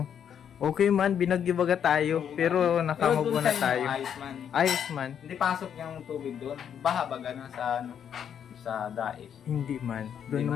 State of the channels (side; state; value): right; quieter; 8.5 dB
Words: Okay man, binagyo-baga tayo, pero nakamubo na tayo. Ayos man. Ayos man. Hindi pasok yung tubig doon. Baha baga na sa sa dais. Hindi man. Doon Hindi